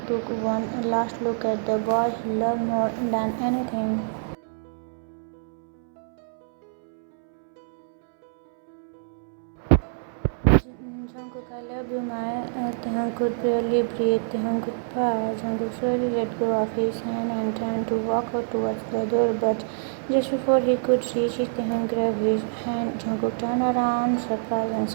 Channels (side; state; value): left; silent; 61 dB below the other